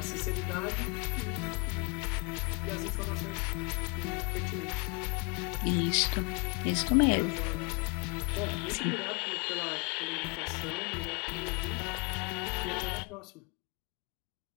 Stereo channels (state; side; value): quieter; right; 31.6 dB